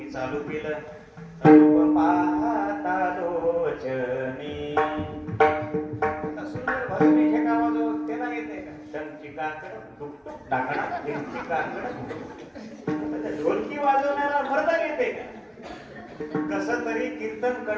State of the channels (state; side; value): identical; both; correlation 1.00